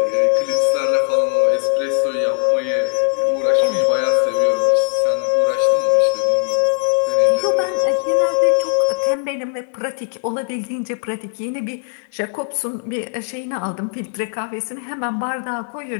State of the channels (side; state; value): right; silent; digital silence